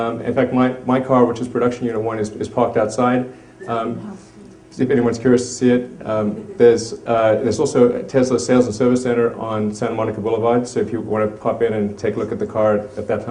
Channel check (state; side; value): identical; both; correlation 1.00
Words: fact, my car, which is production unit 1, is parked outside. If anyone's curious to see it, there's also a Tesla Sales and Service Center on Santa Monica Boulevard. So if you want to pop in and take a look at the car at that